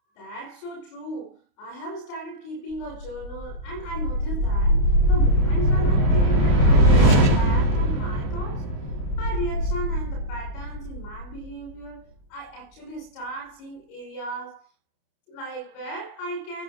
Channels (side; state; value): right; late; 29 ms